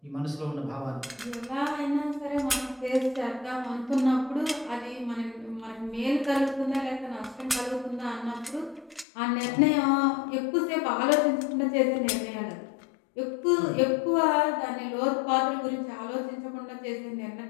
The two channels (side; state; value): right; drops out; at 9.1 s